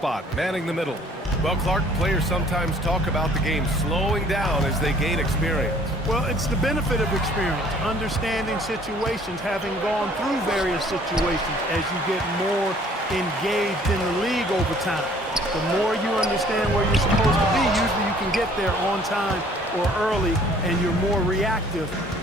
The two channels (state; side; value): normal; both; correlation 0.56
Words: manning the middle. Well, Clark, players sometimes talk about the game slowing down as they gain experience. Well, it's the benefit of experience, understanding situations, having gone through various situations as you get more engaged in the league over time. The more you understand where you're supposed to be, usually you can get there on time or early, and you're more reactive